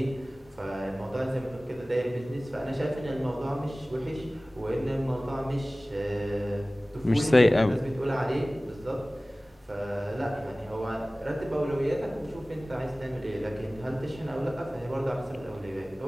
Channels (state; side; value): normal; both; correlation 0.98